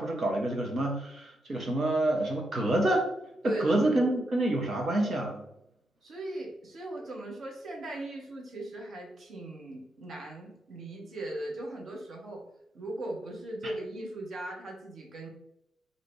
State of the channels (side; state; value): both; normal; correlation 0.82